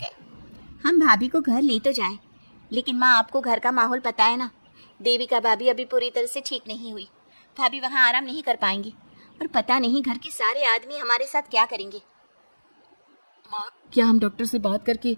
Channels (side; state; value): both; inverted; correlation -1.00